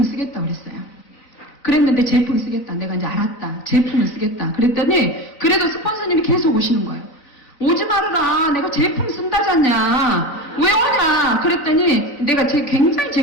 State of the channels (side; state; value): right; late; 3.9 ms